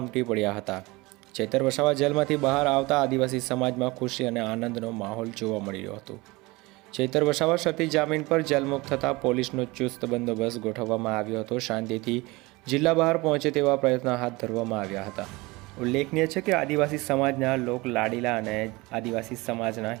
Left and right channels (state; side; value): quieter; left; 22.9 dB